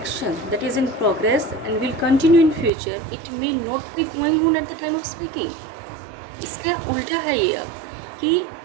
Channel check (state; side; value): drops out; left; at 2.7 s